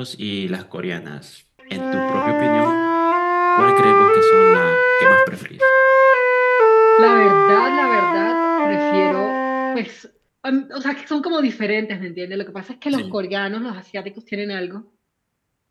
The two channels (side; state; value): both; identical; correlation 1.00